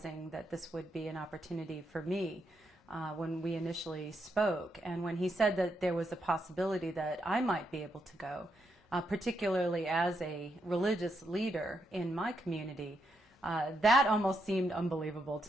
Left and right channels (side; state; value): both; normal; correlation 0.80